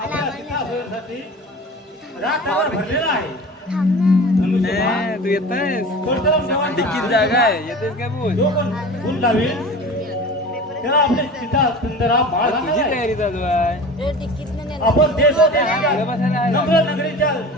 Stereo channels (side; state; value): both; normal; correlation 0.36